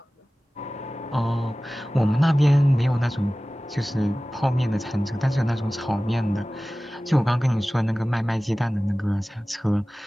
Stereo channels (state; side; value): normal; both; correlation 0.97